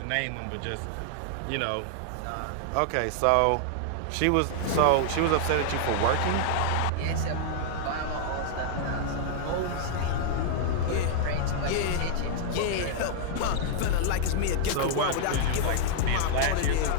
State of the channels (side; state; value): both; different; correlation -0.01